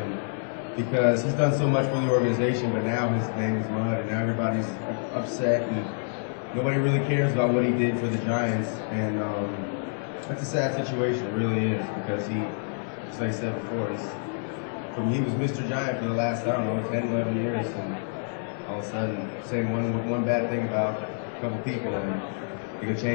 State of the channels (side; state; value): right; silent; 60 dB below the other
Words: because he's done so much for the organization, but now his name is mud, and now everybody's upset. And nobody really cares about what he did for the Giants, and that's a sad situation. It really is, because he, as I said before, he was Mr. Giant for the last, I don't know, 10, 11 years, and all of a sudden say one bad thing about a couple people, and it could